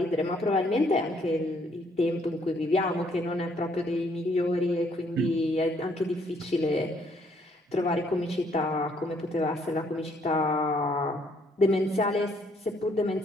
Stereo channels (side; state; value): both; normal; correlation 0.67